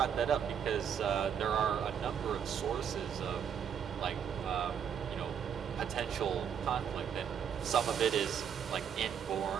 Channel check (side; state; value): left; quieter; 8.1 dB